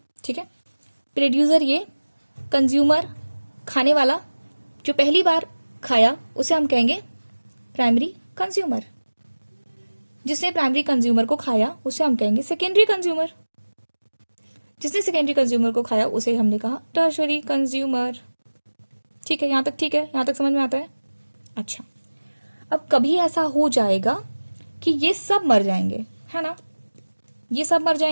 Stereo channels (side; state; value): both; inverted; correlation -1.00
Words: ठीक है। प्रोड्यूसर ये कंज्यूमर, खाने वाला, जो पहली बार खाया उसे हम कहेंगे प्राइमरी कंज्यूमर। जिसने प्राइमरी कंज्यूमर को खाया उसे हम कहेंगे सेकेंडरी कंज्यूमर। जिसने सेकेंडरी कंज्यूमर को खाया उसे हमने कहा टर्शरी कंज्यूमर, ठीक है। यहां तक ठीक है? यहां तक समझ में आता है? अच्छा, अब कभी ऐसा हो जाएगा कि ये सब मर जाएंगे, है ना। ये सब मर